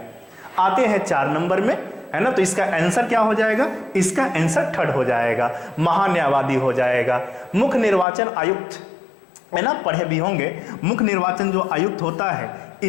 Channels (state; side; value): drops out; right; at 8.1 s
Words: आते हैं 4 नंबर में, है ना, तो इसका आंसर क्या हो जाएगा? इसका आंसर थर्ड हो जाएगा, महान्यायवादी हो जाएगा। मुख्य निर्वाचन आयुक्त, है ना, पढ़े भी होंगे। मुख्य निर्वाचन जो आयुक्त होता है